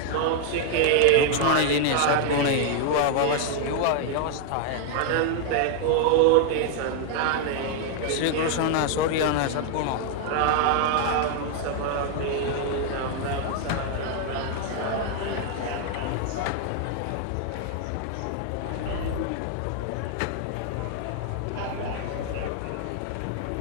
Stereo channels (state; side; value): different; both; correlation 0.00